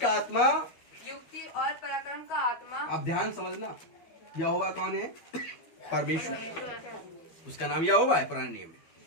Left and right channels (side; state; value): right; late; 12 ms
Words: आत्मा, युक्ति और पराक्रम का आत्मा। अब ध्यान समझना, यहोवा कौन है? परमेश्वर। उसका नाम यहोवा है पुराने नियम में।